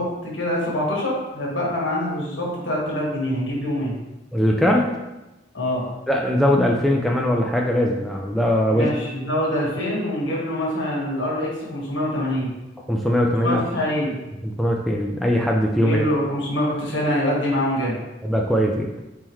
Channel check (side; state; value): both; normal; correlation 0.61